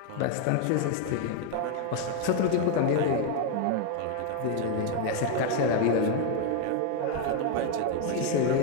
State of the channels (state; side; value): different; both; correlation 0.01